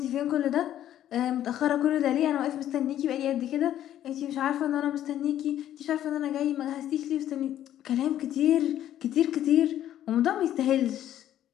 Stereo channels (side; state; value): right; quieter; 11.7 dB